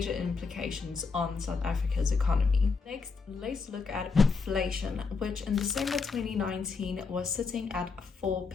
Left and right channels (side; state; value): right; quieter; 4.8 dB